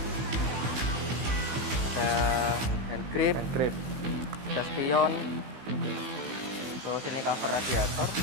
Ada hand grip, ada spion, terus ini cover radiator,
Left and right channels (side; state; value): left; late; 16 ms